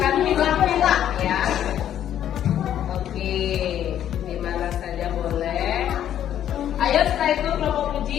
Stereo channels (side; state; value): right; quieter; 10.6 dB